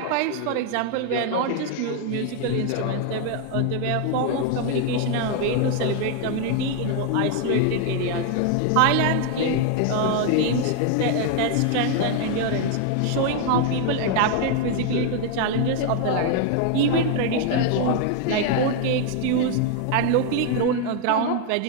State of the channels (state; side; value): different; both; correlation 0.00